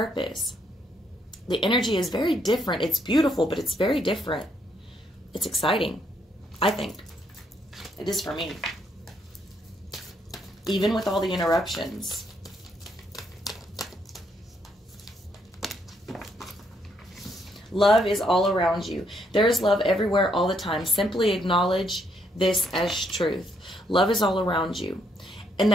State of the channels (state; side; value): normal; both; correlation 0.73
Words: The energy is very different. It's beautiful, but it's very different. It's exciting, I think. It is for me. Even with all the interruptions. Love is all around you. There is love everywhere all the time. Simply acknowledge this as truth. Love is all around you. And